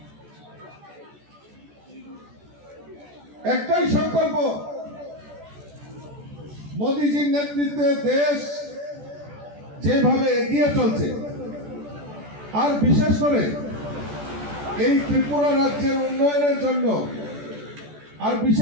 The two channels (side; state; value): left; late; 14 ms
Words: একটাই সংকল্প, মোদিজির নেতৃত্বে দেশ যেভাবে এগিয়ে চলছে, আর বিশেষ করে এই ত্রিপুরা রাজ্যের উন্নয়নের জন্য, আর